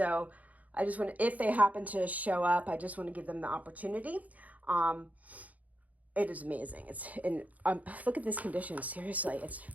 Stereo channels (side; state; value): left; late; 0.075 ms